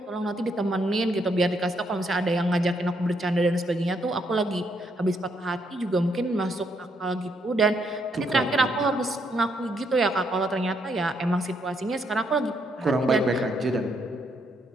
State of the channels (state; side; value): normal; both; correlation 0.75